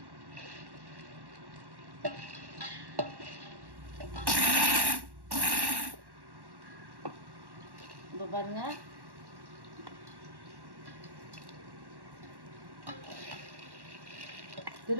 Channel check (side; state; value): left; late; 1.1 ms